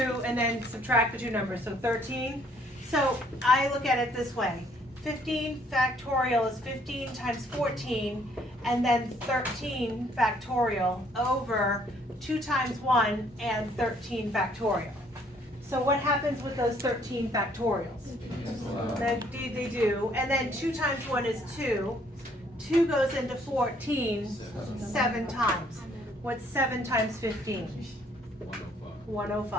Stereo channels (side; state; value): both; normal; correlation 0.64